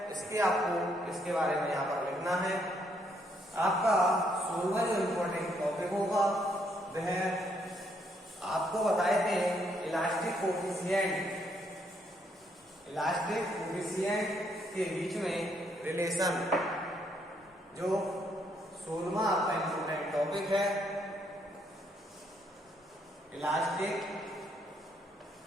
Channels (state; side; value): normal; both; correlation 0.72